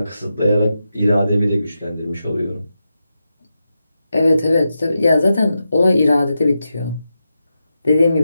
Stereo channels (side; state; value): both; inverted; correlation -0.88